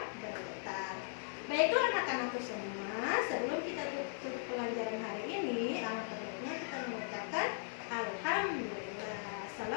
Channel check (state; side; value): silent; right; digital silence